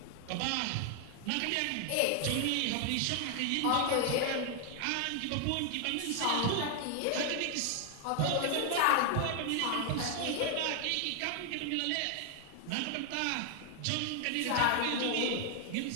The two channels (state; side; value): different; both; correlation 0.00